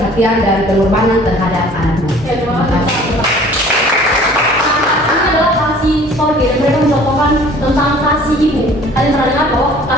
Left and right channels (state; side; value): normal; both; correlation 0.50